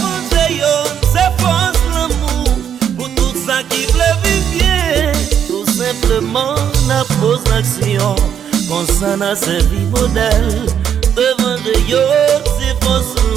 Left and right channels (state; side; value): quieter; left; 8.7 dB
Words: yo, c'est force l'amour, pour tout ça qui veut vivre bien. Tout simplement, n'a pose l'action, pour ça n'a servi modèle. Devant yo, c'est force